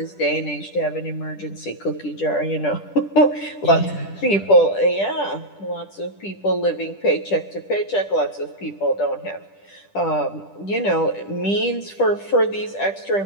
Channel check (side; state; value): right; late; 10 ms